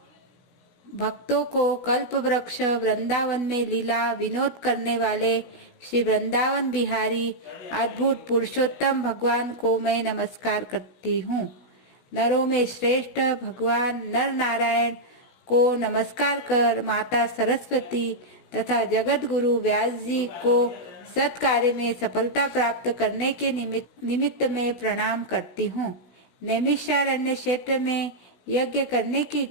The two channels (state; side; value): late; right; 16 ms